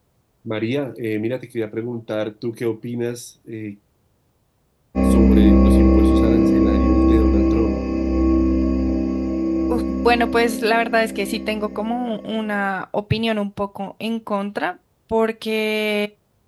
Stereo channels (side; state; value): both; identical; correlation 1.00